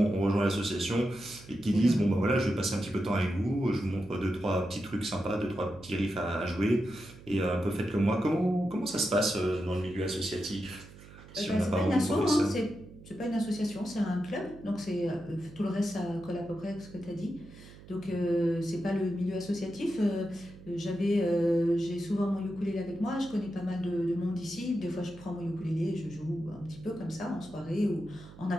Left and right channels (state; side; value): noise; right; hum, 19 dB below the sound